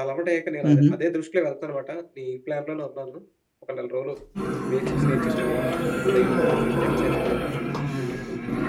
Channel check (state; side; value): identical; both; correlation 1.00